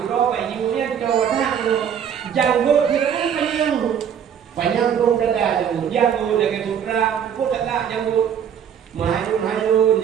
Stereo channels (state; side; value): quieter; left; 8.4 dB